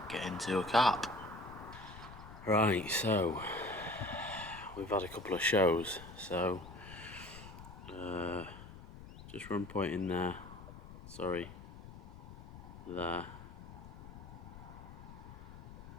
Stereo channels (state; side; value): noise; left; rumble, 14 dB below the sound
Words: get into a carp. Right, so we've had a couple of shows, so just run point in there, sorry, there,